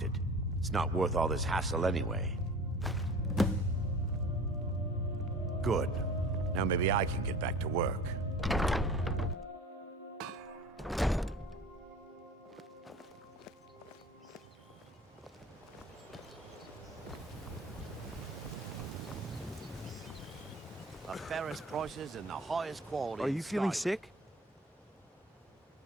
it. It's not worth all this hassle anyway. Good. Now maybe I can get back to work. The fairest prices and the highest quality. Are you feeling sick?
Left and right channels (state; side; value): normal; both; correlation 0.41